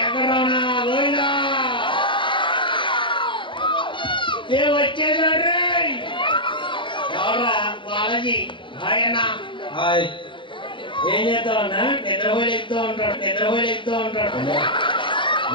వచ్చేసాడు ఎవరా? బాలాజీ. హాయ్ అన్న. హాయ్. ఏం చేస్తావన్నా? నిద్రపోయి ఎక్కుతూ ఉంటాడు.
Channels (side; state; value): right; late; 0.24 ms